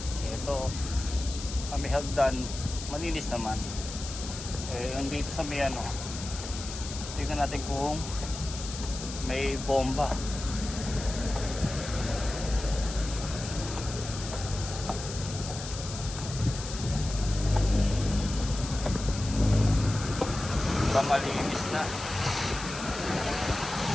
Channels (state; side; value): noise; left; hiss, 10 dB below the sound